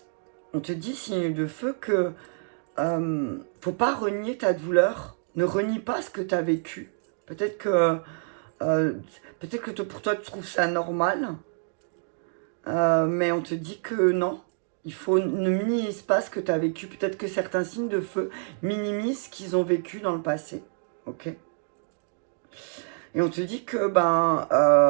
On te dit, signe de feu, que faut pas renier ta douleur. Ne renie pas ce que tu as vécu. Peut-être que pour toi, tu trouves ça normal, mais on te dit que non. Ne minimise pas ce que tu as vécu. Peut-être que certains signes de feu minimisent ce qu'ils ont vécu dans le passé. Ok. Et on te dit que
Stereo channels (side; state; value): left; silent; digital silence